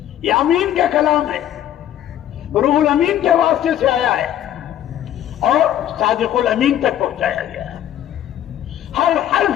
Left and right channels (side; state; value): right; quieter; 11.4 dB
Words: یہ امین کا کلام ہے، روح الامین کے واسطے سے آیا ہے اور صادق الامین تک پہنچایا گیا ہے. ہر